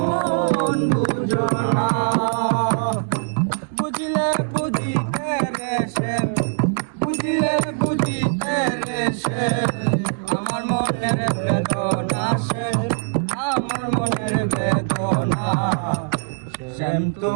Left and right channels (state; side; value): silent; left; digital silence